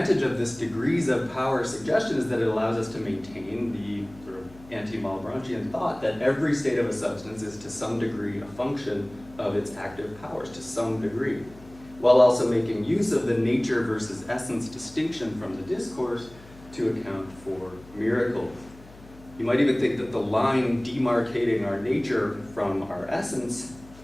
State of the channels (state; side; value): noise; left; hum, 21 dB below the sound